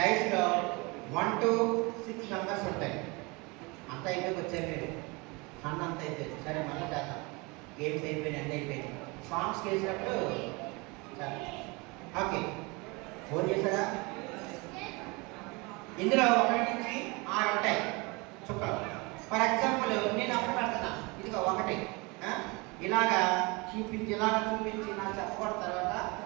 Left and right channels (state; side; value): quieter; left; 26.8 dB